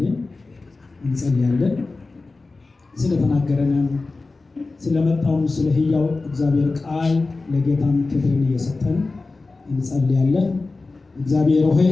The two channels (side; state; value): right; quieter; 3.6 dB